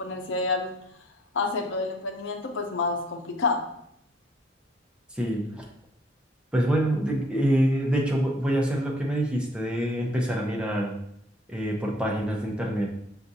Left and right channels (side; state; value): both; normal; correlation 0.61